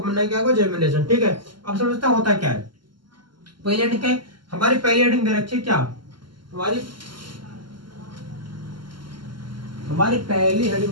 बनना क्या होगा? जर्मिनेशन। ठीक है, अब समझता होता क्या है। पहली हेडिंग क्या है हमारी? पहली हेडिंग दे रखी है क्या हमारी पहली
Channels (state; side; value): late; left; 0.72 ms